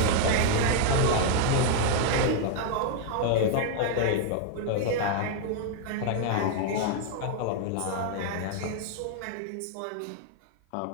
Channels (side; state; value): both; different; correlation 0.00